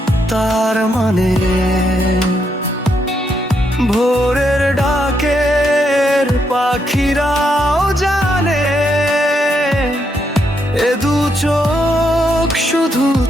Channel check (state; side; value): normal; both; correlation 0.78